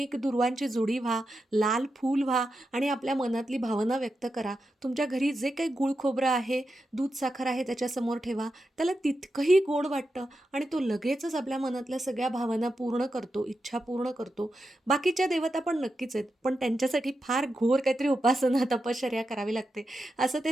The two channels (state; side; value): normal; both; correlation 0.88